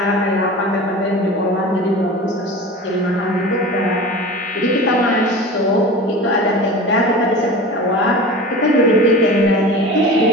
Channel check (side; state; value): both; normal; correlation 0.34